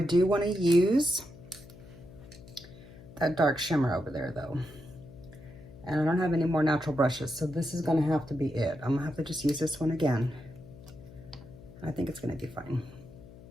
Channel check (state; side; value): noise; left; hum, 19 dB below the sound